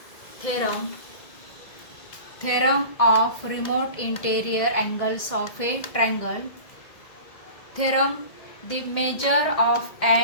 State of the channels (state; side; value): late; right; 2.1 ms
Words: Theorem. Theorem of remote interior angles of a triangle. Theorem. The measure of